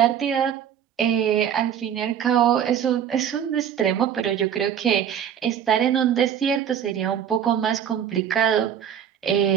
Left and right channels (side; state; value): left; quieter; 9.0 dB